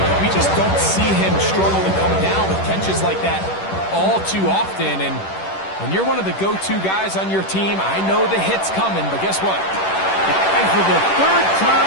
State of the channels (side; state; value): right; late; 10 ms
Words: We just don't see him struggle to come down with catches like that all too often. And when you're one of the go-to guys on your team, I know the hit's coming, but guess what? And for the third